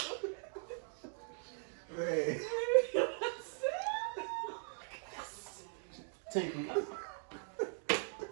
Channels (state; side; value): silent; left; 51 dB below the other